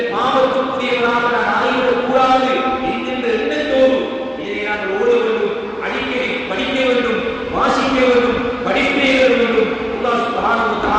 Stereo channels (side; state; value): both; identical; correlation 1.00